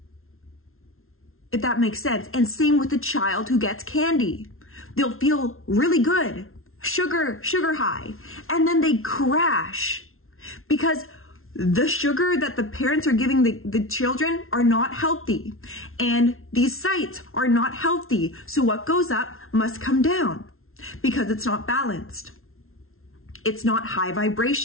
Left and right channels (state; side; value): late; right; 0.62 ms